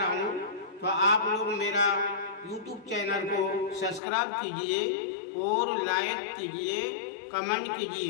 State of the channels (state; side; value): drops out; right; at 4.0 s